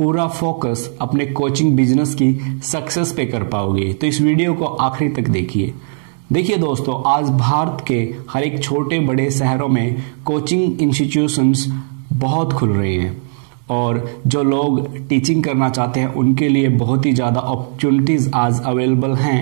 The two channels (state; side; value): silent; left; digital silence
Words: फोकस अपने कोचिंग बिजनेस की सक्सेस पे कर पाओगे। तो इस वीडियो को आखिरी तक देखिए। देखिए दोस्तों, आज भारत के हर एक छोटे बड़े शहरों में कोचिंग इंस्टीट्यूशंस बहुत खुल रहे हैं और जो लोग टीचिंग करना चाहते हैं उनके लिए बहुत ही ज़्यादा अपॉर्चुनिटीज़ आज अवेलेबल